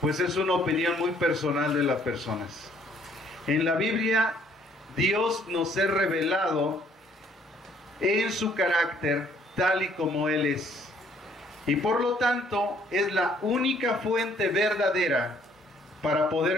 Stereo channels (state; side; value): normal; both; correlation 0.63